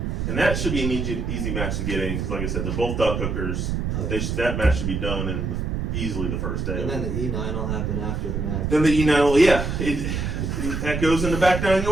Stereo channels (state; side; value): noise; right; rumble, 2 dB below the sound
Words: And that should be an easy match to get in because, like I said, they're both duck hookers. That match should be done in easily the first day. And then the E9 will happen after the match. Then the E9, that goes into back nine